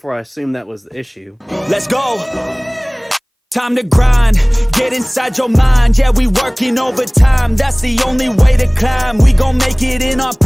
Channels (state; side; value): identical; both; correlation 1.00